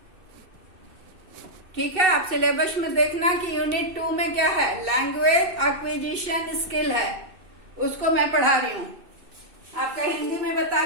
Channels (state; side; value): late; left; 2.6 ms